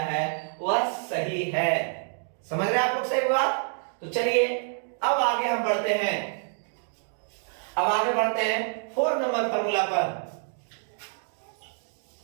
वह सही है। समझ रहे आप लोग सही बात? तो चलिए अब आगे हम बढ़ते हैं, अब आगे बढ़ते हैं 4 नंबर फॉर्मूला पर।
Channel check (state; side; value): silent; left; 60 dB below the other